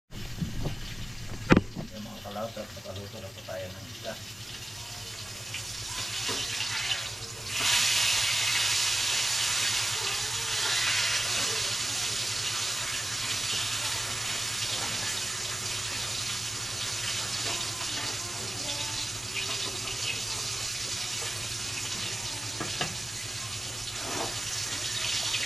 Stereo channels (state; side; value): normal; both; correlation 0.95